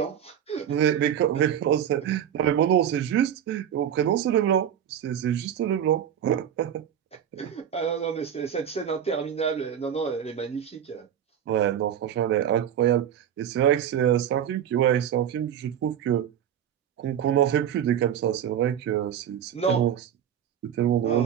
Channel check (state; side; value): quieter; left; 9.5 dB